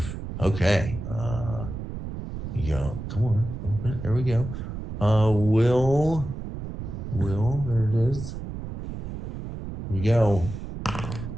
Okay. Come on. Open it. There we go. Will. There it is. Here we go.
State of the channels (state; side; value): noise; right; rumble, 7 dB below the sound